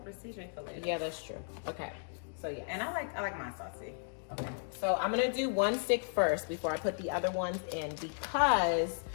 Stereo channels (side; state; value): right; silent; digital silence